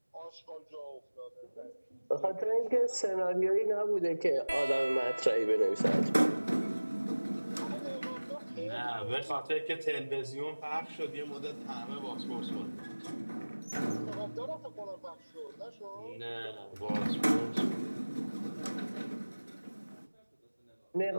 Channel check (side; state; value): both; inverted; correlation -1.00